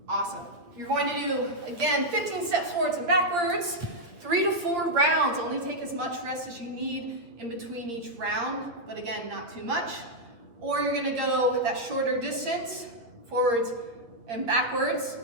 Awesome. You're going to do, again, 15 steps forwards and backwards, 3 to 4 rounds. Only take as much rest as you need in between each round, but again, not too much. Or you're gonna go that shorter distance, forwards and backwards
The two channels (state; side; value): late; left; 8.4 ms